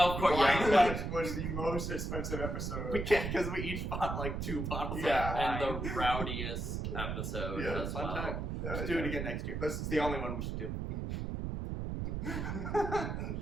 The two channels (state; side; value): noise; right; rumble, 3 dB below the sound